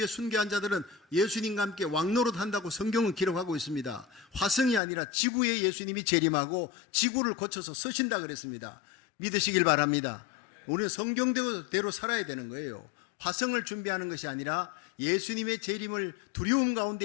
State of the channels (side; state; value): right; drops out; at 4.8 s